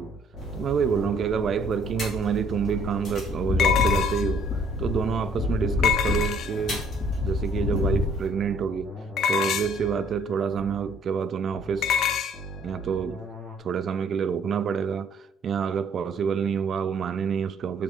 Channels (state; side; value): normal; both; correlation 0.60